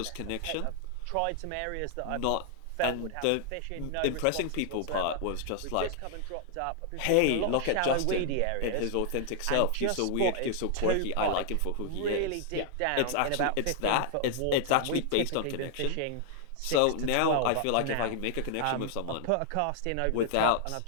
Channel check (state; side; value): different; both; correlation 0.00